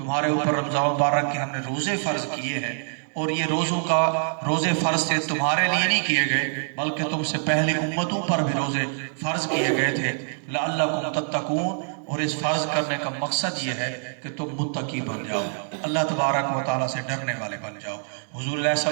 اوپر رمضان مبارک کے ہم نے روزے فرض کیے ہیں، اور یہ روزے فرض سے تمہارے لیے نہیں کیے گئے بلکہ تم سے پہلے امتوں پر بھی روزے فرض کیے گئے تھے، لعلکم تتقون، اور اس فرض کرنے کا مقصد یہ ہے کہ تم متقی بن جاؤ، اللہ تبارک و تعالیٰ سے ڈرنے والے بن جاؤ۔ حضور علیہ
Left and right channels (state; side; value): silent; left; digital silence